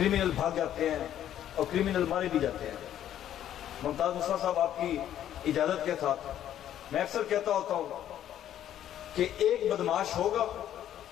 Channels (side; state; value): right; quieter; 11.1 dB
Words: भाग जाते हैं और क्रिमिनल मारे भी जाते हैं। मुमताज मुस्तफा साहब, आपकी इजाजत के साथ मैं अक्सर कहता होता हूं कि एक बदमाश होगा